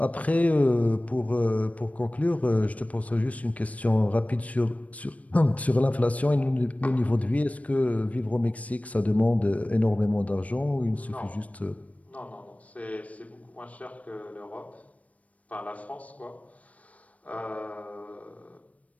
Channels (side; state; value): right; late; 0.068 ms